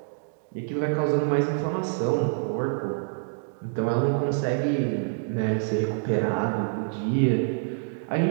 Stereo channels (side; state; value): left; silent; digital silence